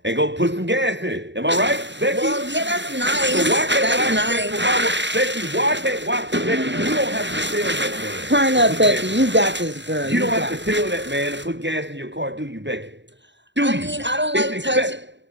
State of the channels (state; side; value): late; left; 0.52 ms